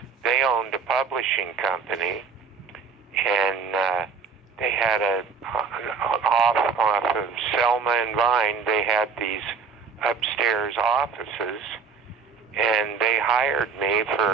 they owned a publishing company, and they had off of Selma and Vine, they had these upstairs offices, and they hired me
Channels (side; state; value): left; quieter; 5.4 dB